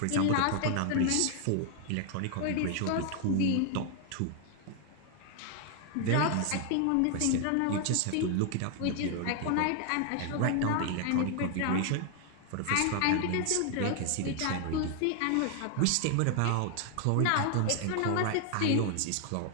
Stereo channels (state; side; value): different; both; correlation 0.00